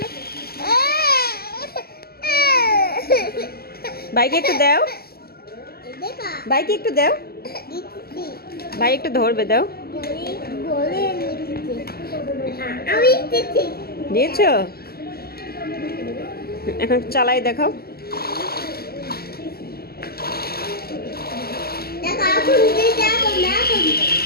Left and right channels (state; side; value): late; right; 0.45 ms